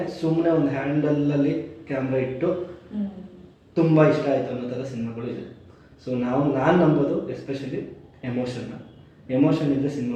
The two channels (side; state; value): both; identical; correlation 1.00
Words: ಸುಮ್ಮನೆ ಒಂದು ಹ್ಯಾಂಡಲಲ್ಲಿ ಕ್ಯಾಮ್ರಾ ಇಟ್ಟು ತುಂಬ ಇಷ್ಟ ಆಯಿತು ಅನ್ನೋ ಥರ ಸಿನಿಮಾಗಳು ಇದೆ. ಸೊ ನಾನು ನಂಬೋದು ಎಸ್ಪೆಷಲಿ ಎಮೋಷನ್ ಇದ್ದರೆ ಸಿನಿಮಾ